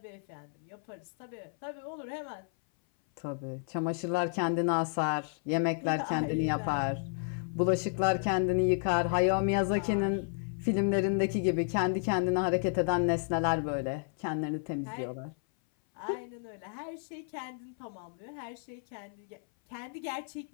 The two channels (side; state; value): right; silent; 56 dB below the other